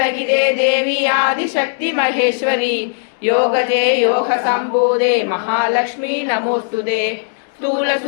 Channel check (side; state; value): right; silent; digital silence